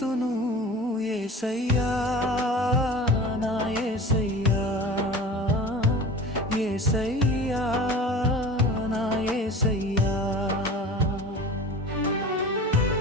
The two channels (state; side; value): normal; both; correlation 0.38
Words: యేసయ్యా నా యేసయ్యా, యేసయ్యా నా యేసయ్యా.